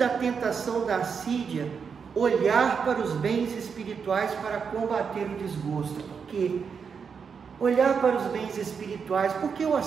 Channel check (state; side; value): quieter; left; 6.2 dB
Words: tentação da assídia, olhar para os bens espirituais para combater o desgosto. Por quê? Olhar para os bens espirituais, porque o